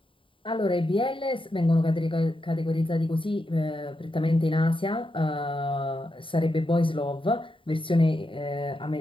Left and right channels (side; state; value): right; late; 0.25 ms